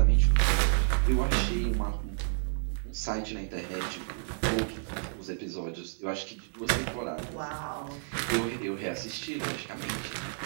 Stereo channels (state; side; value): silent; left; digital silence